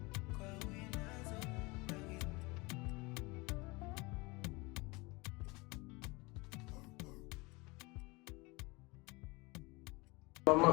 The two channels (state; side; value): quieter; right; 25.2 dB